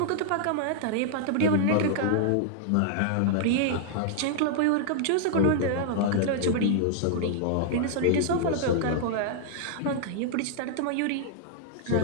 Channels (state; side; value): different; both; correlation -0.01